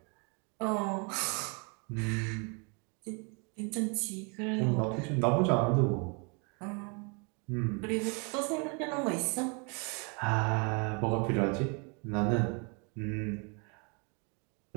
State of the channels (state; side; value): quieter; left; 34.6 dB